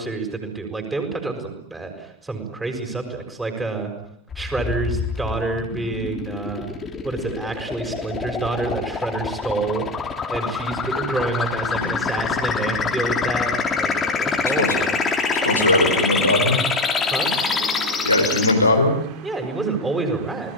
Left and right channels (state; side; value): normal; both; correlation 0.18